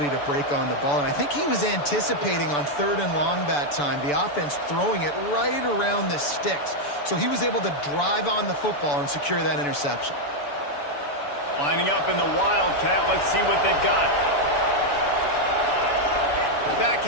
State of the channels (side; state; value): right; late; 6.9 ms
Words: to break on the ball. And I think he was anticipating on third and long that time, the offense throwing it right around the sticks. So he was able to drive on the football and secure that interception. Lining up in the Wildcat. Let's see what they've got. Back